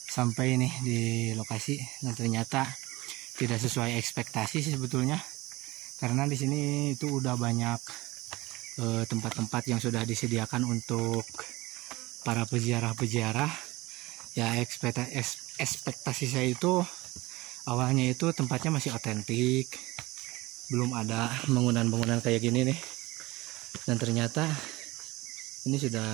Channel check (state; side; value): quieter; left; 20.8 dB